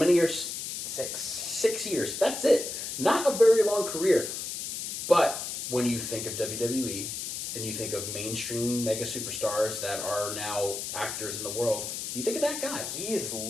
years? 6. 6 years. That's it. Not a very long career. But when you think of WWE and you think of mainstream mega superstars that are now actors in the world, you think of that guy. He is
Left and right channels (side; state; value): left; noise; hiss, 5 dB below the sound